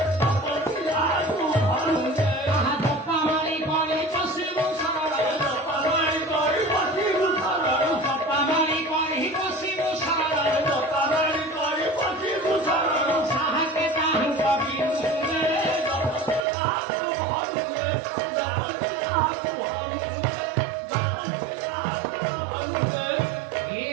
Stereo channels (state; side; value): drops out; left; at 16.4 s